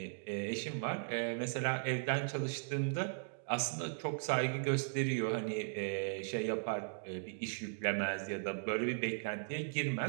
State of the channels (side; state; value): left; silent; digital silence